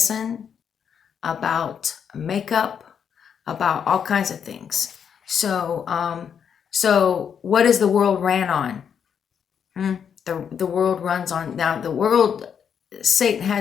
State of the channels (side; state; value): right; quieter; 7.6 dB